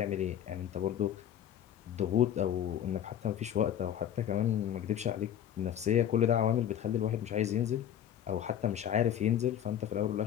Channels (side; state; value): right; quieter; 10.1 dB